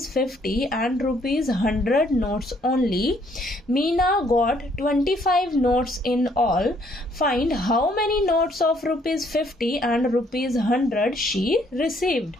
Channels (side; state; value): both; normal; correlation 0.66